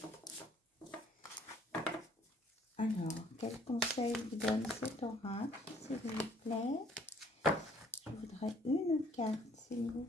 Alors, quel conseil vous donne cet oracle, s'il vous plaît? Je voudrais une carte, s'il vous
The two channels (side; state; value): both; normal; correlation 0.60